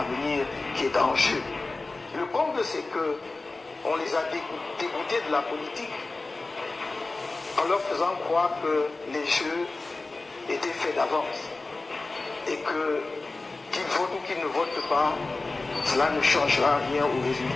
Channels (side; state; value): right; quieter; 3.4 dB